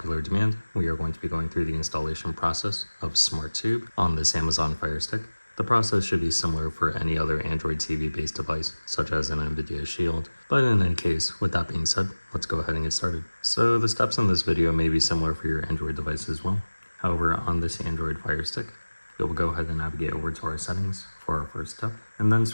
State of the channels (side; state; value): both; inverted; correlation -1.00